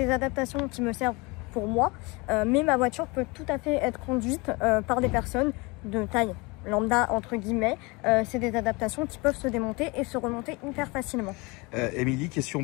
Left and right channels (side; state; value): right; quieter; 26.3 dB